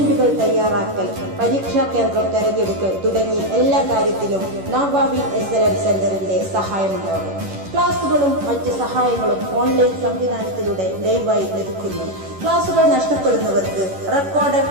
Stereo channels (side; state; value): left; late; 11 ms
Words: തയ്യാറാക്കൽ, പരീക്ഷാ കേന്ദ്രം തെരഞ്ഞെടുക്കൽ തുടങ്ങി എല്ലാ കാര്യത്തിലും നവാബിൻ SLM സെന്ററിന്റെ സഹായമുണ്ടാകും. ക്ലാസുകളും മറ്റ് സഹായങ്ങളും ഓൺലൈൻ സംവിധാനത്തിലൂടെ ലൈവായി ലഭിക്കുന്നു. ക്ലാസുകൾ നഷ്ടപ്പെടുന്നവർക്ക്